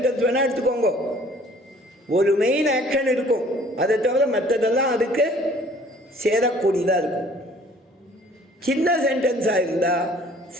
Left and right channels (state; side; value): normal; both; correlation 0.54